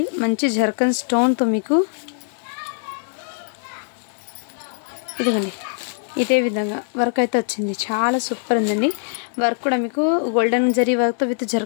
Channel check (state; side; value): silent; right; digital silence